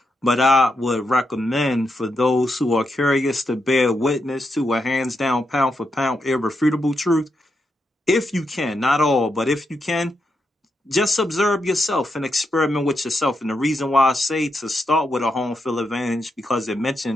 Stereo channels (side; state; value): both; normal; correlation 0.83